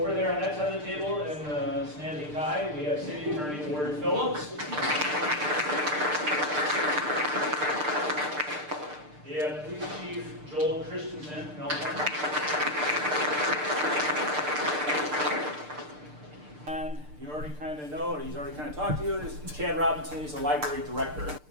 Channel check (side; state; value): left; late; 6.7 ms